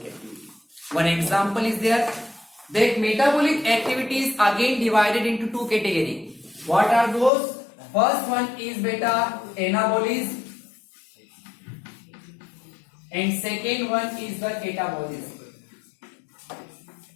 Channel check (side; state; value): right; drops out; at 7.3 s